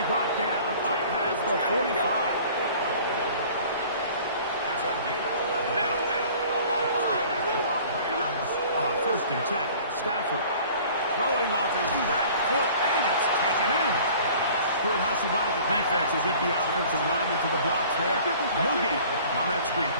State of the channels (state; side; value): inverted; both; correlation -0.48